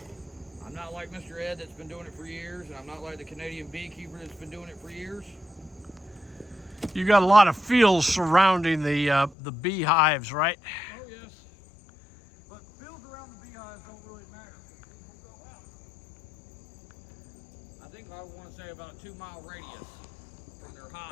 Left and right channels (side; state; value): right; drops out; at 9.3 s